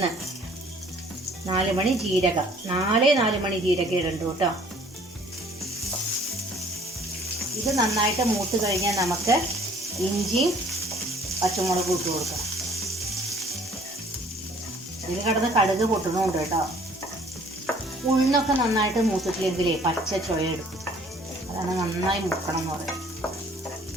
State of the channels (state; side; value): normal; both; correlation 0.56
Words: 4 മണി ജീരകം, 4 മണി ജീരകം ഇടണ്ടു കേട്ടോ. ഇത് നന്നായിട്ട് മൂത്ത് കഴിഞ്ഞാൽ നമുക്ക് ഇഞ്ചിയും പച്ചമുളകും ഇട്ട് കൊടുക്കാം. ഇതിൽ കിടന്ന് കടുക് പൊട്ടണമുണ്ട് കേട്ടോ. ഉഴുന്നൊക്കെ നന്നായിട്ട് മൂത്തിട്ടില്ലെങ്കിലേ പച്ച ചുവ എടുക്കും. അതാണ് നന്നായി മൂക്കണം എന്ന് പറയുന്നത്.